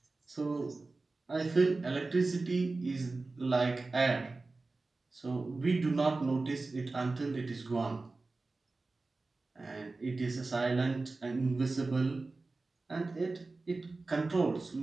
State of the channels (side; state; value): left; quieter; 3.5 dB